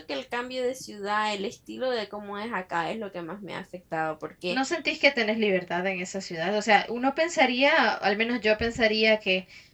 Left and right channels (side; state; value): both; identical; correlation 1.00